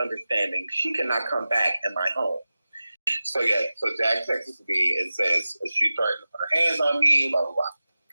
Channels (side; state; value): both; inverted; correlation -0.95